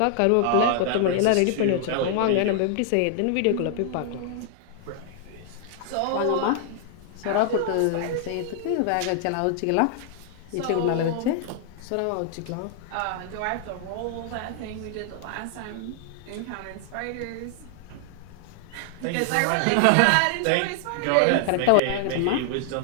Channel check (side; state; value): both; different; correlation 0.00